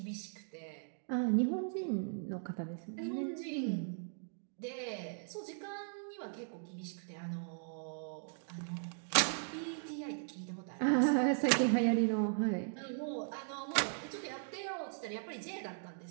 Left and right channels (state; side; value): silent; left; digital silence